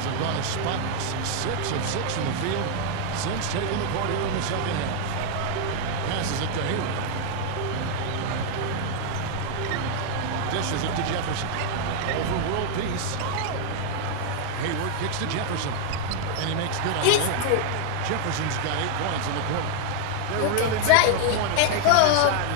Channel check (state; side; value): different; both; correlation 0.00